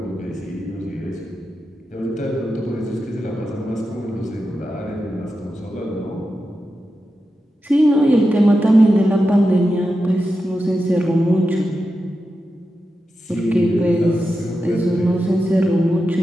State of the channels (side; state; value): both; normal; correlation 0.90